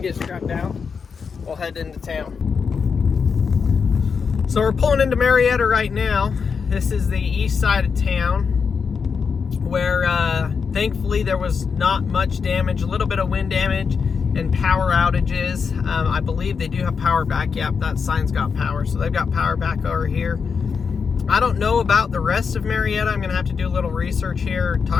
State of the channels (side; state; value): right; quieter; 5.8 dB